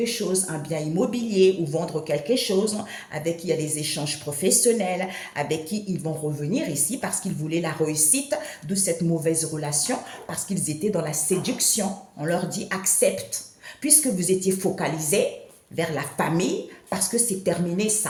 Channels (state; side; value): identical; both; correlation 1.00